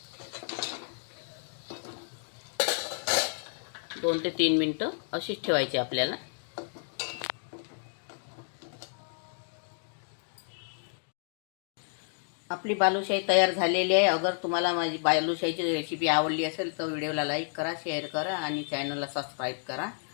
2 ते 3 मिनिटं अशीच ठेवायची आपल्याला। आपली बालुशाही तयार झालेली आहे। अगर तुम्हाला माझी बालुशाहीची रेसिपी आवडली असेल तर व्हिडिओला लाईक करा, शेअर करा आणि चॅनलला सबस्क्राईब करा।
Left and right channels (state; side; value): silent; right; 57 dB below the other